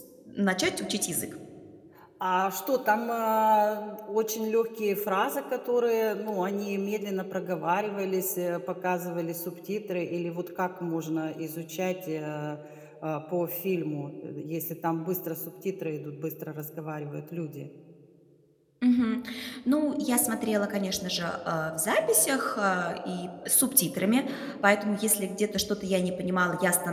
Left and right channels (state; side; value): identical; both; correlation 1.00